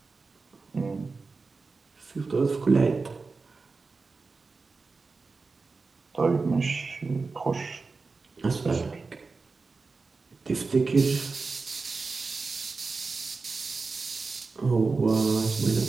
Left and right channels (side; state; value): left; quieter; 4.2 dB